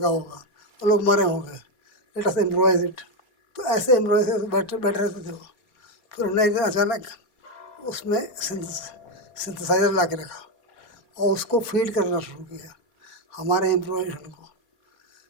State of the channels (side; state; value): right; late; 4.3 ms